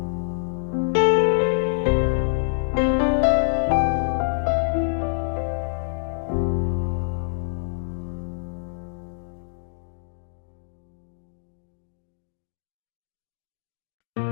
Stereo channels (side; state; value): right; silent; digital silence